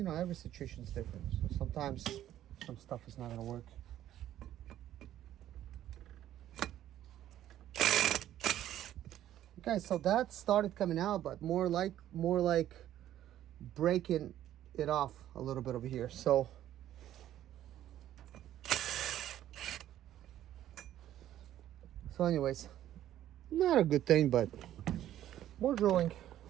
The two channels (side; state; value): left; quieter; 12.2 dB